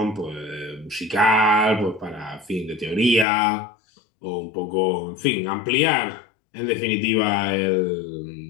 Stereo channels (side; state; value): right; drops out; at 3.2 s